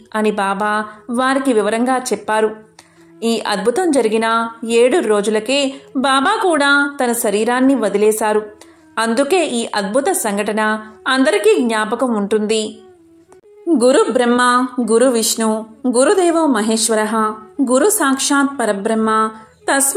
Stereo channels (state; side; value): identical; both; correlation 1.00